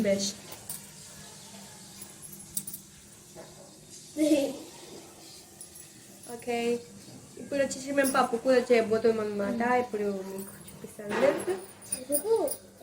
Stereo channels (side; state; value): both; identical; correlation 1.00